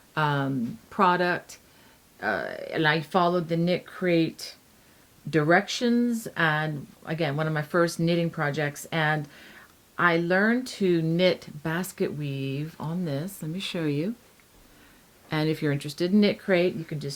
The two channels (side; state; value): both; identical; correlation 1.00